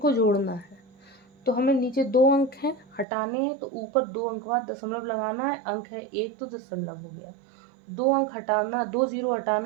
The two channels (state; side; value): drops out; left; at 3.1 s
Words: जोड़ना है। तो हमें नीचे 2 अंक हैं, हटाने हैं, तो ऊपर 2 अंक बाद दशमलव लगाना है। अंक है 1 तो दशमलव हो गया, 2 अंक हटाना, 2 जीरो